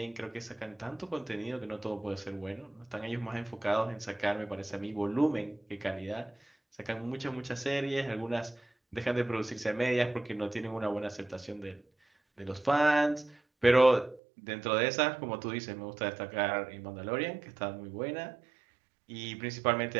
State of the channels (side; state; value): left; drops out; at 14.2 s